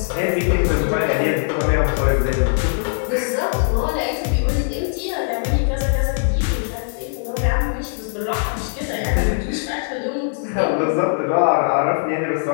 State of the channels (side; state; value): right; silent; digital silence